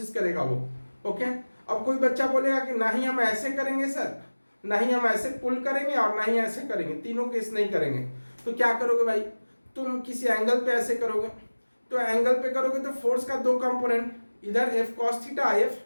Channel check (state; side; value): inverted; both; correlation -1.00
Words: करेगा वो। ओके, अब कोई बच्चा बोलेगा कि नहीं हम ऐसे करेंगे सर, नहीं हम ऐसे पुल करेंगे और नहीं ऐसे करेंगे, तीनों केस नहीं करेंगे, तो क्या करोगे भाई, तुम किसी एंगल पे ऐसे करोगे, तो एंगल पे करोगे तो फोर्स का दो कंपोनेंट, इधर F cos theta, F